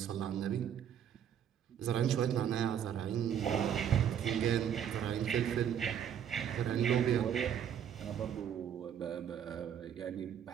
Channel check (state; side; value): quieter; left; 9.1 dB